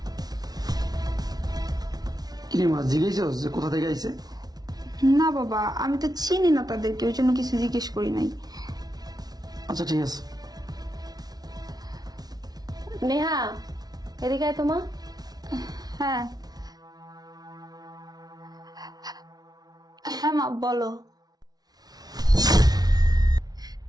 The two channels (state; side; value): late; left; 0.19 ms